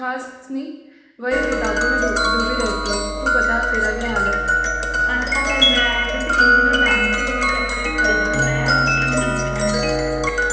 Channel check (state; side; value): identical; both; correlation 1.00